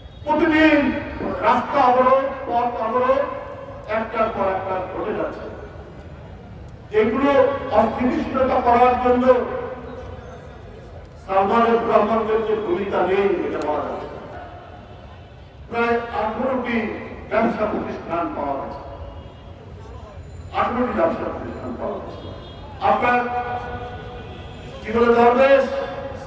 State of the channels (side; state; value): both; identical; correlation 1.00